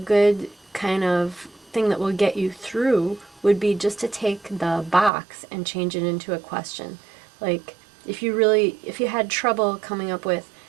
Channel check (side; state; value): left; drops out; at 5.1 s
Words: kind of thing that will get you through would be just to take the box and change it into a question. Like if you had trouble coming up with